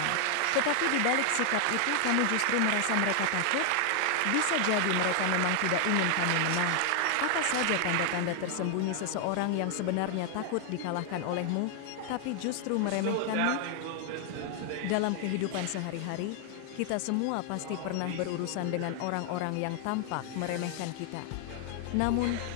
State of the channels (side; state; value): both; different; correlation 0.00